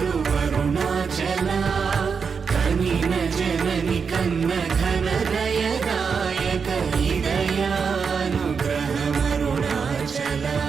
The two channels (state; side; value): quieter; left; 5.8 dB